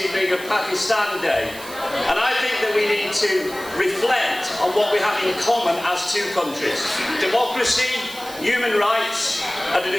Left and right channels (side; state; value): right; noise; hiss, 15 dB below the sound